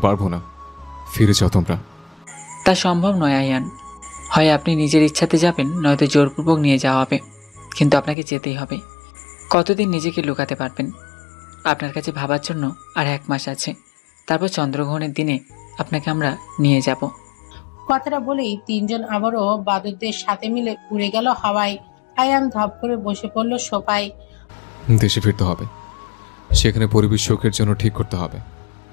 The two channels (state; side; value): drops out; right; at 8.2 s